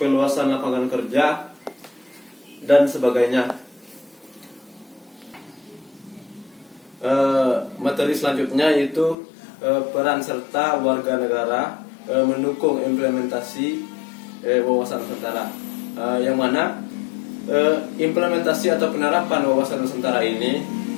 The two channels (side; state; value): right; drops out; at 9.2 s